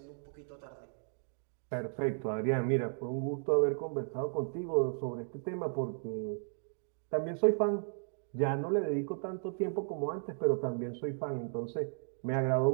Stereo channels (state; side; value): silent; left; digital silence